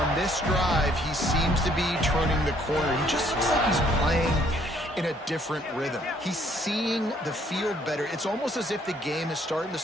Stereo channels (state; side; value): normal; both; correlation 0.65